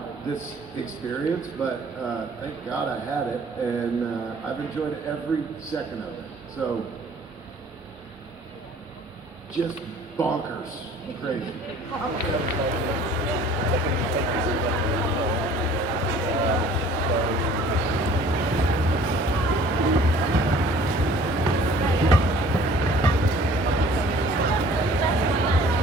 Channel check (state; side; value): normal; both; correlation 0.52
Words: this experience, but thank God I had it, and I've enjoyed every second of it. So, just bonkers, crazy.